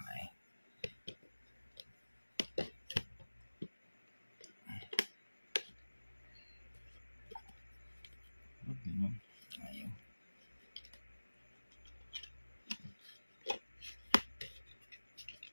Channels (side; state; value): both; inverted; correlation -1.00